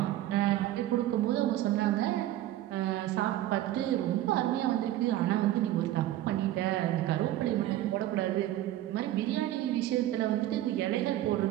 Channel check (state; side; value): quieter; left; 14.0 dB